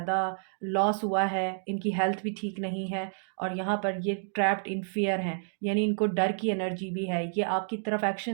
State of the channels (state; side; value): silent; left; digital silence